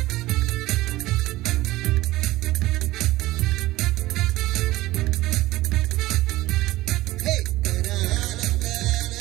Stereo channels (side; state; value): left; quieter; 17.6 dB